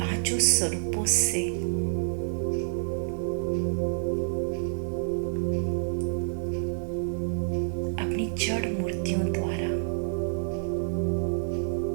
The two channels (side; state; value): left; silent; digital silence